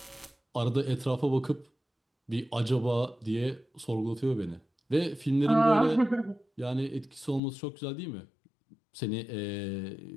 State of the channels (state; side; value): drops out; right; at 7.4 s